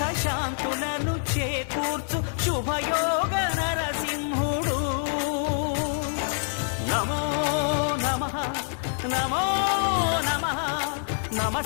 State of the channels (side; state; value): right; silent; digital silence